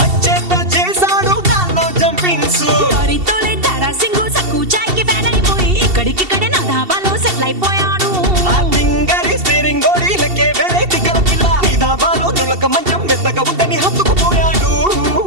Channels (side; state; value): left; late; 2.7 ms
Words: అచ్చేత చేశాడు దానిలో జంపింగ్స్ తోలే తారాసింగు సక్కు చాయ్ కి ఫ్యాన్ అయిపోయి ఇక్కడికిక్కడే నా ధాబాలో సెటిల్ అయిపోయాడు ఆ తింగరి స్టీరింగ్ గోడీలకే వేరే తిక్కల పిల్ల నీ ధాబాలో నులక మంచం మెత్తగా ఉంటని హత్తుకుపోయాడు